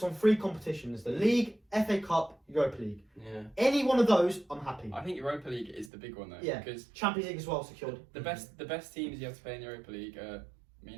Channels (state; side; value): drops out; left; at 5.9 s